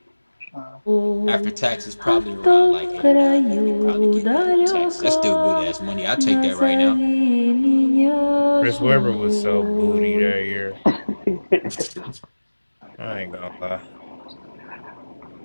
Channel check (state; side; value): inverted; both; correlation -1.00